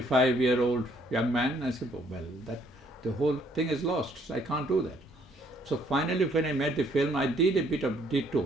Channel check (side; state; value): both; normal; correlation 0.66